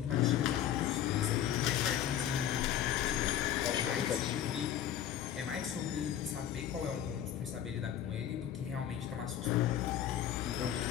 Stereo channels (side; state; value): right; quieter; 10.5 dB